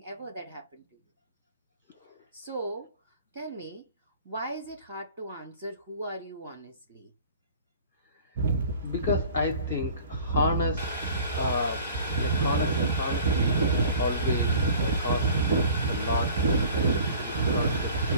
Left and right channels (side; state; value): both; inverted; correlation -0.46